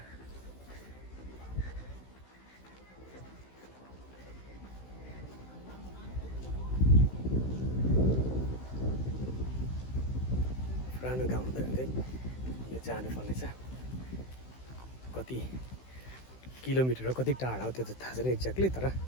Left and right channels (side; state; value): right; late; 16 ms